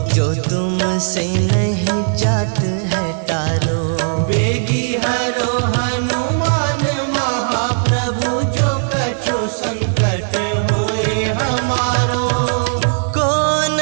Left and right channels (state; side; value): silent; left; digital silence